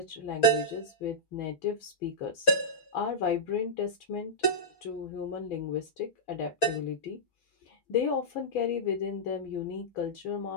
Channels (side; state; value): right; late; 6.1 ms